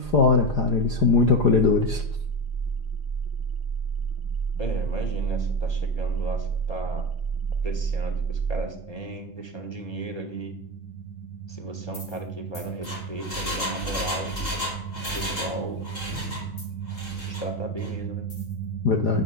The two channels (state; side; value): late; right; 3.8 ms